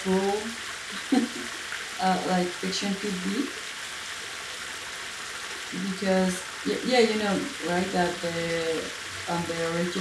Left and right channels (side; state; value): both; identical; correlation 1.00